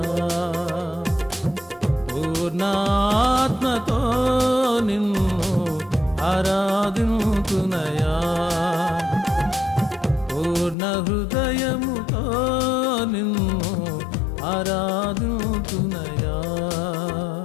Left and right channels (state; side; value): drops out; right; at 10.8 s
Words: పూర్ణాత్మతో నిన్ను ఆరాధింతునయా, పూర్ణ హృదయముతో నిన్ను ఆరాధింతునయా,